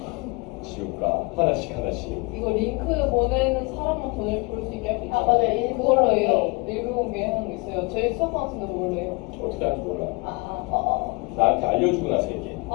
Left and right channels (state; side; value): quieter; right; 28.4 dB